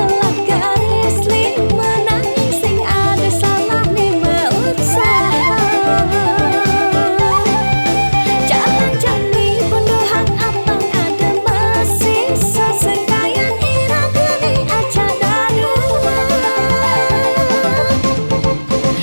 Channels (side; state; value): both; inverted; correlation -1.00